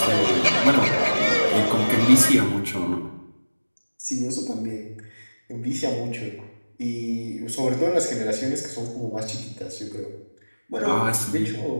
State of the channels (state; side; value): inverted; both; correlation -1.00